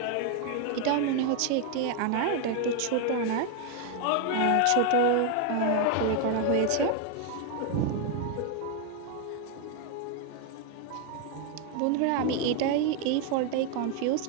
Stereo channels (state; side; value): different; both; correlation 0.01